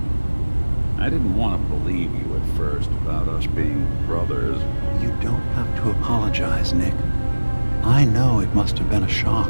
I didn't want to believe you at first about us being brothers. You don't have to apologize, Nick. I know it must have been a shock.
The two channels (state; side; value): inverted; both; correlation -1.00